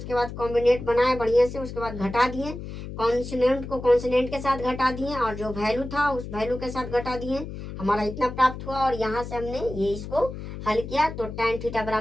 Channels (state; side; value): noise; left; hum, 9 dB below the sound